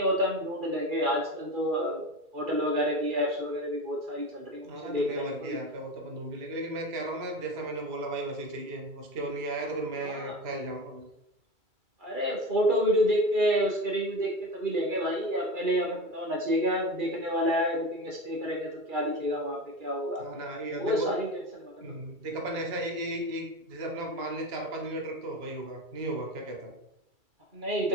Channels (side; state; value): left; late; 2.3 ms